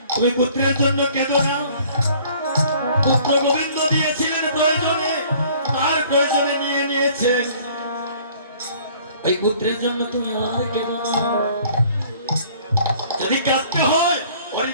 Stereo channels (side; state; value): both; inverted; correlation -0.54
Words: তুমি পুত্রের জন্য কেঁদো না। পুত্র গোবিন্দ দিয়েছিলেন প্রয়োজনে, তার প্রয়োজনে নিয়ে নিয়েছেন। এই পুত্রের জন্য তুমি আর কেঁদো না। যদি কাঁদতে হয় হরি